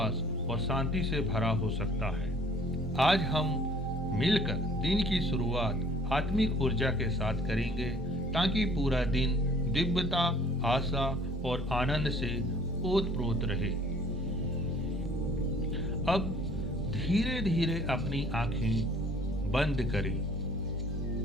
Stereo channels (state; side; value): normal; both; correlation 0.54